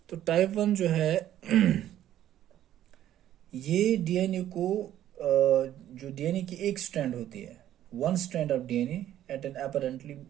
तो टाइप 1 जो है ये डीएनए को जो डीएनए की एक स्ट्रैंड होती है, one strand of DNA at an apparently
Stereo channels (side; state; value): left; quieter; 12.0 dB